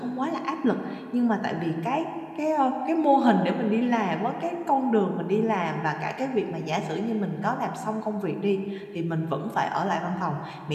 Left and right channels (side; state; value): both; identical; correlation 1.00